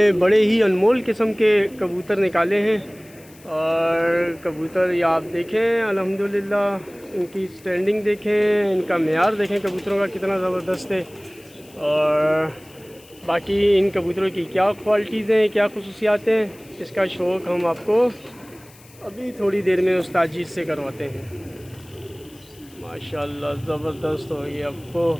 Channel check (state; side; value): noise; left; hiss, 25 dB below the sound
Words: बड़े ही अनमोल किस्म के कबूतर निकाले हैं। और कबूतर ये आप देखें, अल्हम्दुलिल्लाह इनकी स्टैंडिंग देखें, इनका मेयार देखें कबूतरों का कितना ज़बरदस्त है। और बाकी इन कबूतरों की क्या क्वालिटीज़ हैं, क्या खसूसियात हैं, इसका शौक़ हम आपको अभी थोड़ी देर में उस्ताद जी से करवाते हैं। माशाल्लाह ज़बरदस्त हो, ये अब